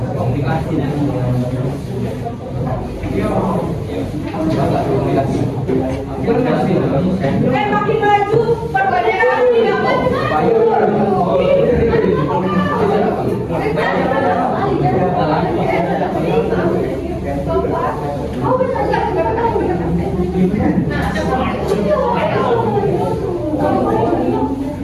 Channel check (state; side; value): identical; both; correlation 1.00